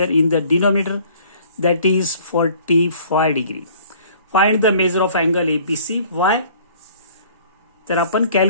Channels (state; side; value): inverted; both; correlation -0.53